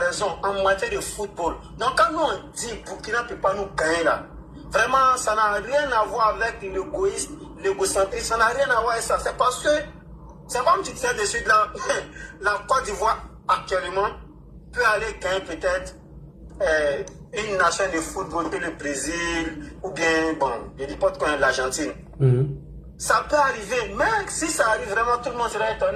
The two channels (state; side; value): identical; both; correlation 1.00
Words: en matière de football. Donc quand nous on dit Burkina ne peut pas nous gagner là, vraiment ça n'a rien à voir avec l'égoïsme, l'égocentrisme, ça n'a rien à voir avec ça. C'est parce que, c'est comme tu disais dessus, la Côte d'Ivoire actuellement peut aller gagner peut-être une nation de football que le Brésil ou bien, bon, je ne dis pas de l'Argentine. Ça peut arriver, mais si ça arrive vraiment, tout le monde sera